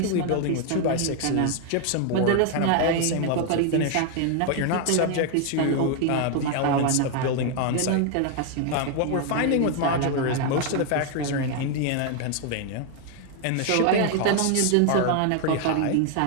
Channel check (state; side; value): different; both; correlation 0.00